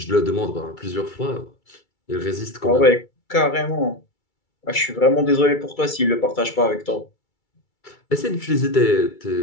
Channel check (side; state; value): right; late; 2.3 ms